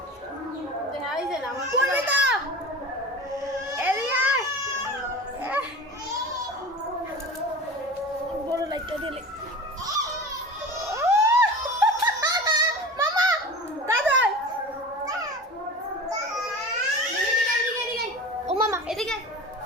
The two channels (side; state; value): both; normal; correlation 0.34